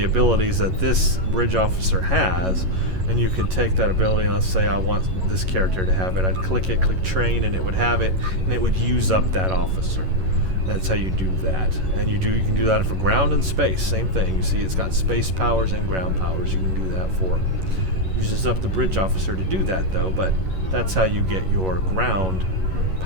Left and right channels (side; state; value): left; late; 11 ms